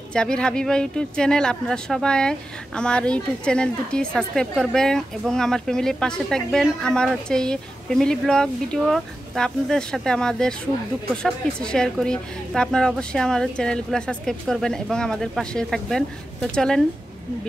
জাবির হাবিবা ইউটিউব চ্যানেল। আপনারা সবাই আমার ইউটিউব চ্যানেল দুটি সাবস্ক্রাইব করবেন এবং আমার ফ্যামিলির পাশে থাকবেন। আমার হচ্ছে এই ফ্যামিলি ব্লগ ভিডিও, তো আপনাদের সাথে আমাদের সুখ দুঃখ সব কিছু শেয়ার করি। তো আপনারা অবশ্যই আমার চ্যানেলগুলো সাবস্ক্রাইব করবেন এবং আমাদের পাশে থাকবেন। তো চলেন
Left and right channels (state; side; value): normal; both; correlation 0.92